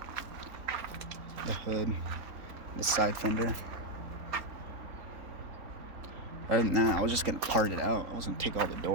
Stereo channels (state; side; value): late; left; 3.8 ms